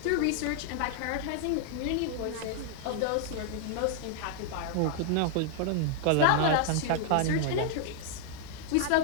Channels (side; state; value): both; different; correlation 0.00